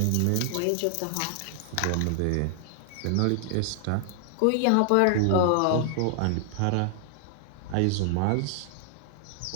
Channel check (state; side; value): different; both; correlation 0.00